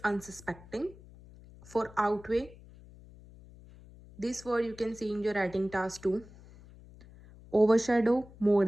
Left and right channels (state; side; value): noise; left; hum, 21 dB below the sound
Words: unsuspecting. For outweigh, this word you can see in your writing task 2. Overshadow,